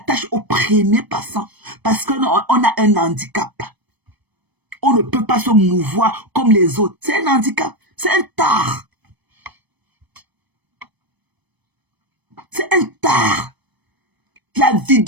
au premier passant parce qu'on a un handicap. On ne peut pas se mouvoir comme les autres. C'est un handicap. C'est un tard. C'est un tard. La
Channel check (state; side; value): late; left; 1.0 ms